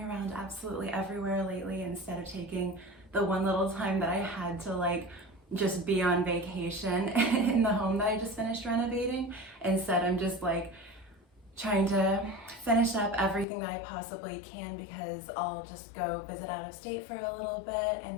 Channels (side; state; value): right; drops out; at 13.5 s